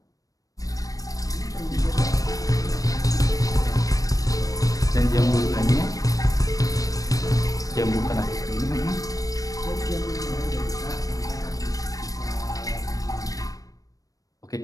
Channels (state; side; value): late; right; 0.17 ms